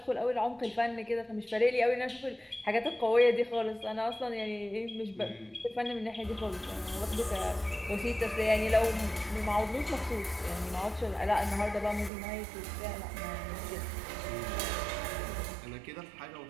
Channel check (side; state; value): left; drops out; at 12.1 s